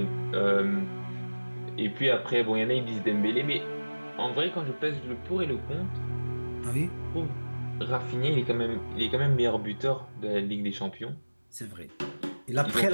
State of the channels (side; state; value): both; inverted; correlation -1.00